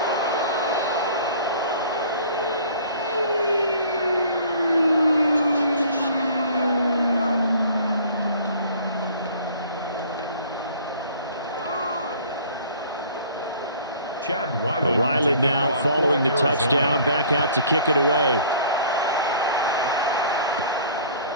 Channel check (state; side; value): inverted; both; correlation -0.50